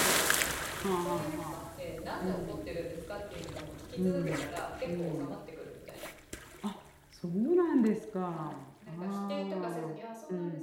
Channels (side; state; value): both; identical; correlation 1.00